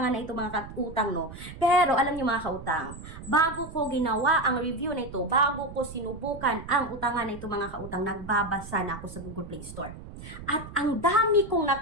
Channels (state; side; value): noise; right; rumble, 13 dB below the sound